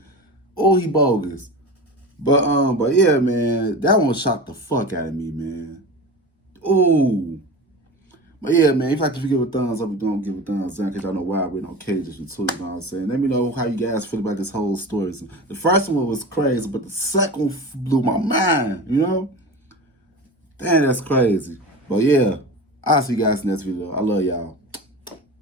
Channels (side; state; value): both; normal; correlation 0.30